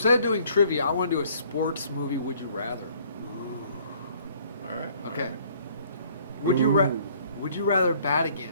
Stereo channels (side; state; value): both; inverted; correlation -0.59